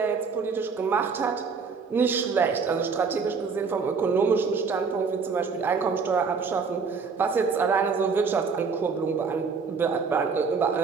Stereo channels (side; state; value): left; quieter; 5.3 dB